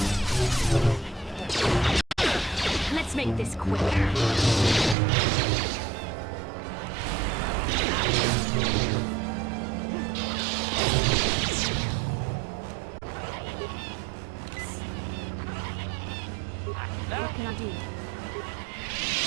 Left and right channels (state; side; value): drops out; left; at 5.0 s